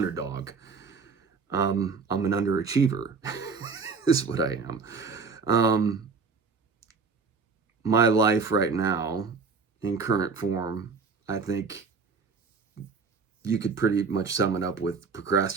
I'm an underachiever. Is what I am. Um, my life right now, in current form, I think you could pretty much sum it up with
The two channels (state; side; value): quieter; left; 4.9 dB